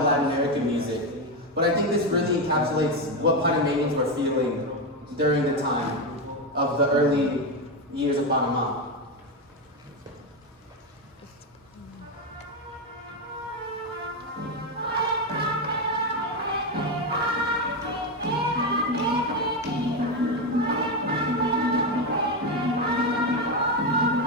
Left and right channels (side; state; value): both; normal; correlation 0.11